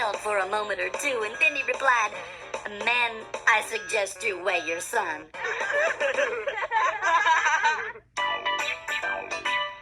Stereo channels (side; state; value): both; identical; correlation 1.00